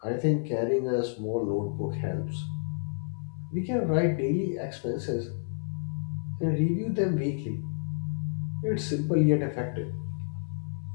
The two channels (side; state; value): right; silent; 58 dB below the other